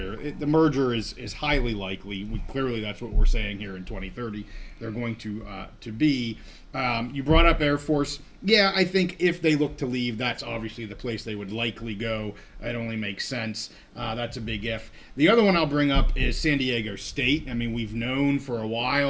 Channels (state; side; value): identical; both; correlation 1.00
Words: The merger is highly likely. Clearly, that's what we're saying here in 2030. They're going to be. You brought up Air Force. Yeah, I think if they look to leave, that's obviously the place they would likely go. It only makes sense. That's a big if. The other one I'll bring up is San Diego State. I mean, we've known for a